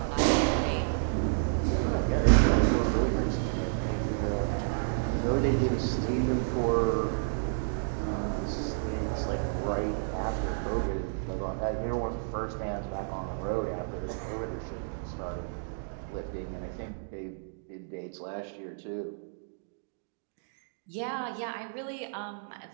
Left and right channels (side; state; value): left; silent; digital silence